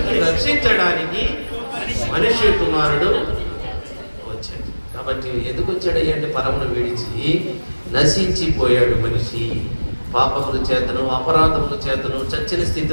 రక్షించడానికి మనిషి కుమారుడు వచ్చాడు. కాబట్టి ఎందుకు వచ్చాడు అంటే పరమును విడిచి నశించిపోయాడు మనిషి. పాపముల చేతను అపరాధముల చేతను చచ్చిన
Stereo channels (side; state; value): both; inverted; correlation -1.00